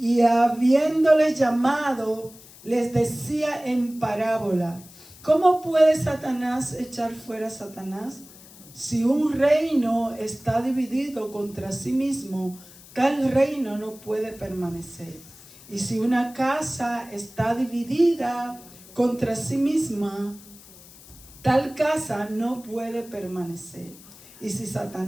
habiéndoles llamado, les decía en parábola: ¿cómo puede Satanás echar fuera a Satanás? Si un reino está dividido contra sí mismo, tal reino no puede permanecer. Y si una casa está dividida contra sí misma, tal casa no puede permanecer. Y si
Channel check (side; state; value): left; noise; hiss, 21 dB below the sound